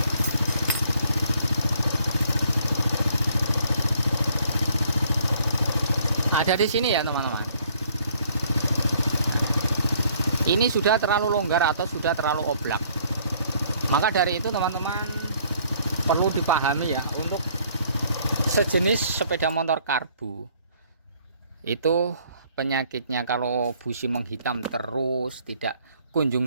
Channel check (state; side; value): inverted; both; correlation -0.63